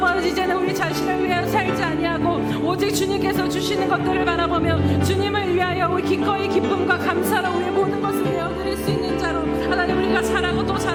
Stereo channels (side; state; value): both; identical; correlation 1.00